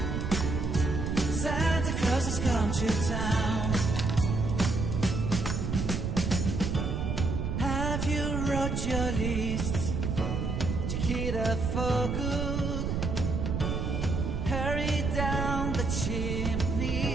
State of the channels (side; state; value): right; noise; rumble, 1 dB below the sound